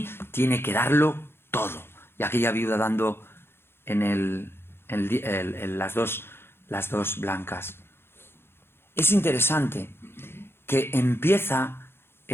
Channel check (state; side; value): late; right; 0.11 ms